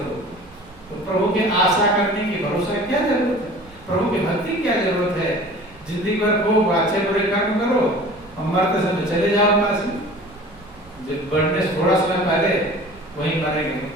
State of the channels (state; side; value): noise; right; rumble, 25 dB below the sound